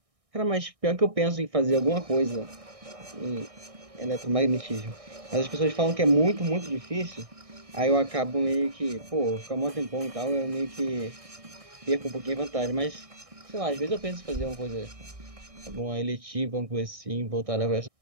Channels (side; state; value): left; late; 1.6 ms